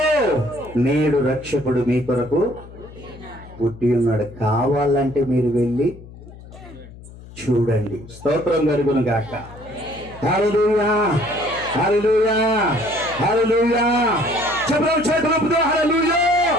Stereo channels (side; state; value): left; noise; hum, 18 dB below the sound